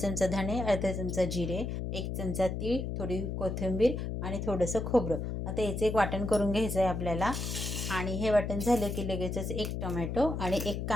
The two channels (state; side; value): noise; left; hum, 3 dB below the sound